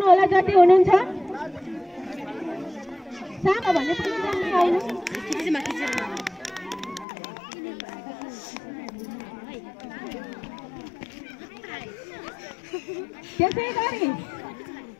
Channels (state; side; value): drops out; right; at 7.1 s